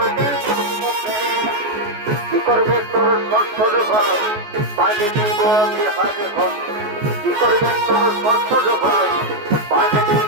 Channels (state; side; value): late; left; 14 ms